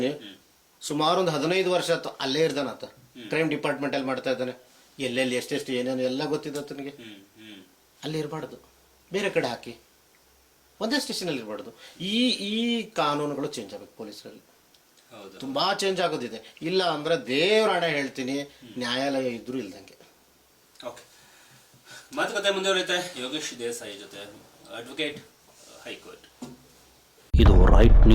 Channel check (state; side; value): identical; both; correlation 1.00